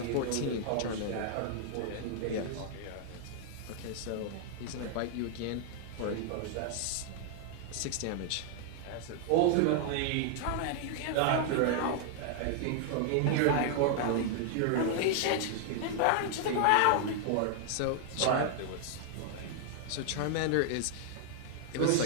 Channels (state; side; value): different; both; correlation 0.00